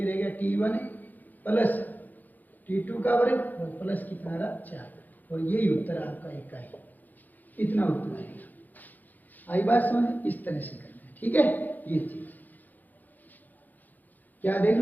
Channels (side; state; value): right; late; 0.083 ms